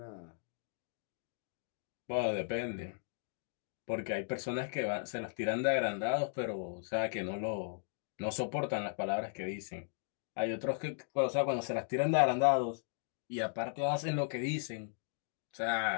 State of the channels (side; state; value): right; silent; digital silence